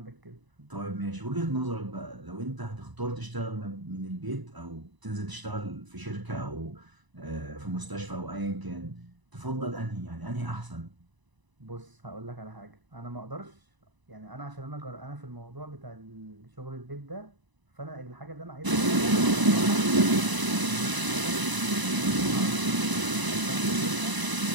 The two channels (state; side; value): late; left; 1.0 ms